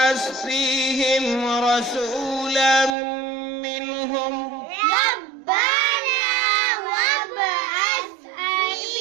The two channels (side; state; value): left; drops out; at 3.0 s